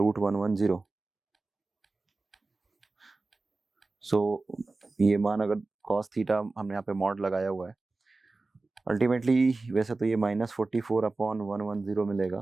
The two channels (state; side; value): quieter; left; 3.5 dB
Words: सो ये मान अगर cos थीटा हमने यहाँ पे मॉड लगाया हुआ है, अल्टीमेटली वैसे तो ये -44 अपॉन 110 मिलेगा।